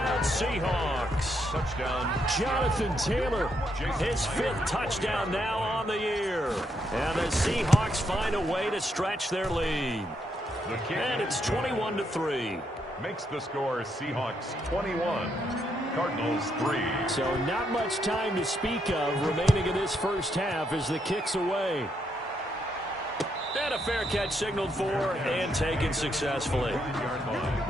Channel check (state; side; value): normal; both; correlation 0.78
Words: Seahawks. Touchdown. Jonathan Taylor, his 5th touchdown now on the year. And the Seahawks find a way to stretch their lead. And it's 21-3. Makes the score Seahawks 21, Cardinals 3. So not much time to speak of remaining in this first half as the kick's away. And a fair catch signaled for and taken successfully.